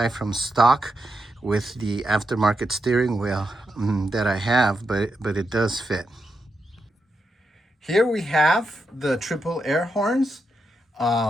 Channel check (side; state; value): both; normal; correlation 0.85